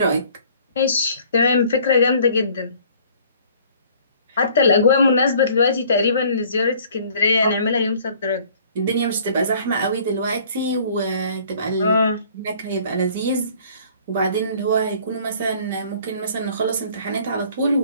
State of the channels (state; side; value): inverted; both; correlation -0.55